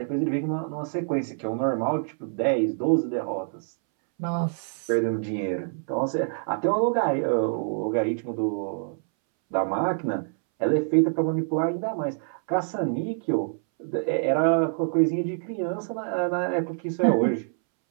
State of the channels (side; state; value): left; silent; 61 dB below the other